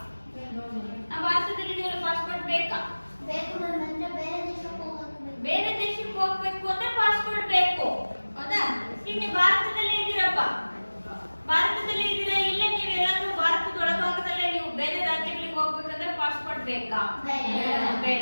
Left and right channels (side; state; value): both; inverted; correlation -1.00